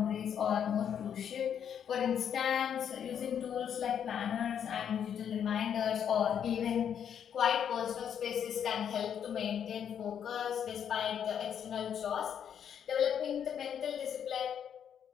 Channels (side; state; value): right; quieter; 8.5 dB